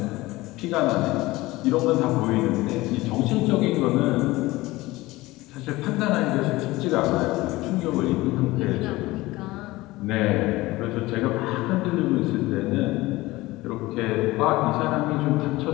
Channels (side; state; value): right; quieter; 19.5 dB